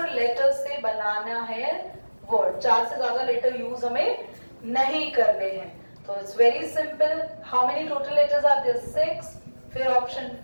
लेटर से बनाना है वर्ड। 4 से ज्यादा लेटर यूज हमें नहीं करने हैं। तो it's very simple. How many total letters are there? 6, फिर ऑप्शन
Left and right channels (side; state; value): both; inverted; correlation -1.00